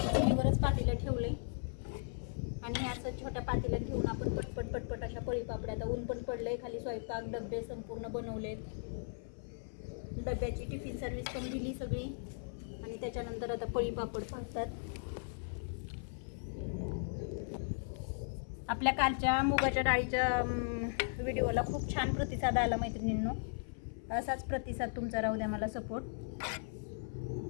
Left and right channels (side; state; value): right; silent; 53 dB below the other